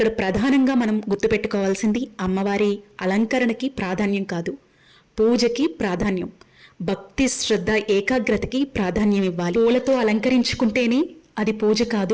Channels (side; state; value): both; identical; correlation 1.00